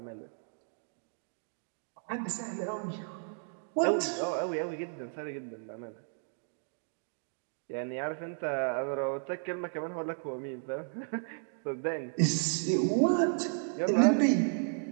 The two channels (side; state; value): left; silent; digital silence